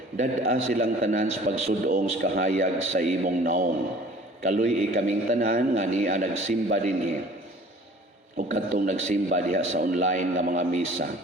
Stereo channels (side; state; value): both; normal; correlation 0.49